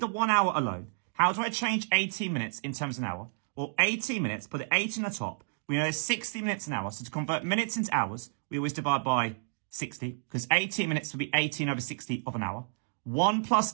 1 hour alone. How do I change 18 minutes in terms of an hour? Well, 18 minutes, put the 8 in the top. We know there's 60 minutes an hour. So to convert minutes into hours, we always divide by 60, because 18 minutes would be 18 over 60 of an hour. 1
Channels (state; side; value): silent; left; digital silence